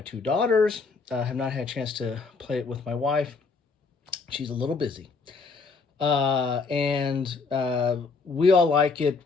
two daughters. Have not had a chance to play it with my wife. She's a little busy. And we all like it.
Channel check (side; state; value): right; quieter; 4.5 dB